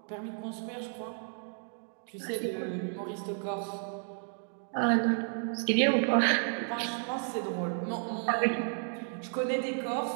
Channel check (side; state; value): left; silent; 56 dB below the other